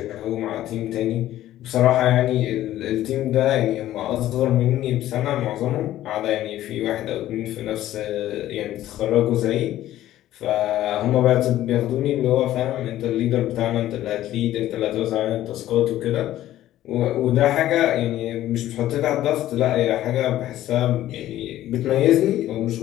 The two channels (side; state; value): right; quieter; 13.7 dB